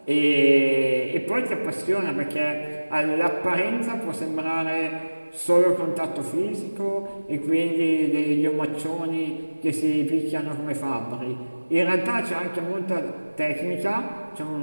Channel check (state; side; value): inverted; both; correlation -1.00